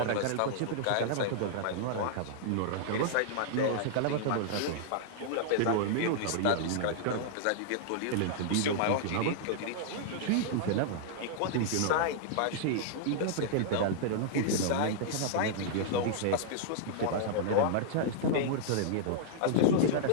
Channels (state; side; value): different; both; correlation -0.01